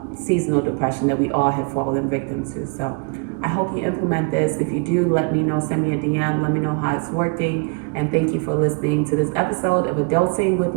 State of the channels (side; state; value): left; quieter; 34.5 dB